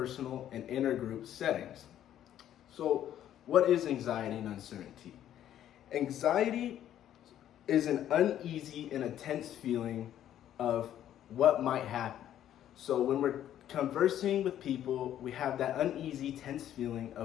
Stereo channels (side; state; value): right; quieter; 11.2 dB